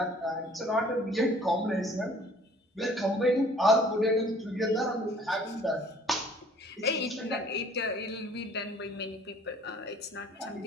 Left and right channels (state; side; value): normal; both; correlation 0.55